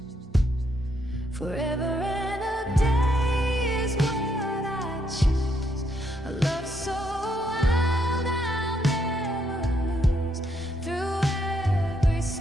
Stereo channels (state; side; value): normal; both; correlation 0.75